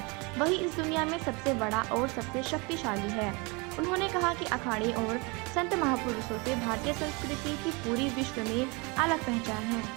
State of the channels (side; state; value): left; quieter; 28.4 dB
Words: वही इस दुनिया में सबसे बड़ा और सबसे शक्तिशाली है। उन्होंने कहा कि अखाड़े और संत महापुरुषों से भारतीय संस्कृति की पूरी विश्व में अलग पहचान है।